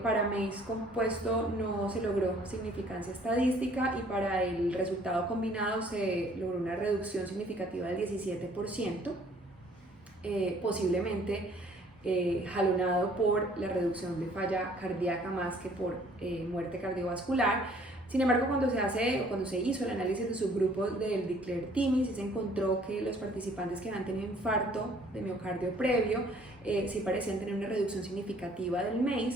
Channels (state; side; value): normal; both; correlation 0.58